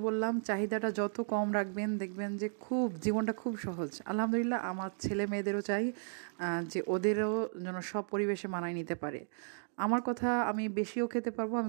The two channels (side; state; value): left; silent; digital silence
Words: বললাম, চাহিদাটা যত কম রাখবেন দেখবেন যে খুব জীবনটা খুব সহজ। আলহামদুলিল্লাহ আমার ছেলে মেয়েদেরও চাই যে ওদেরও যেন সব পরিবেশে মানায় নিতে পারে। আমার কথা, আমি বেশিও খেতে পারবো,